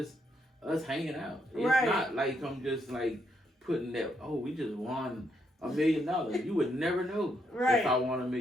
us hanging out. It's not like I'm just like putting that, oh, we just won $1 million. You would never know if I won $1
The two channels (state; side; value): normal; both; correlation 0.77